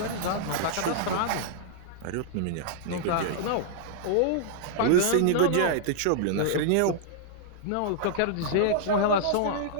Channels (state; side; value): different; both; correlation -0.01